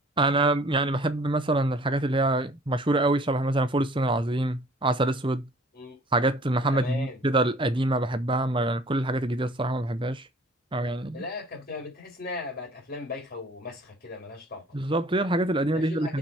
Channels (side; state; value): both; normal; correlation 0.52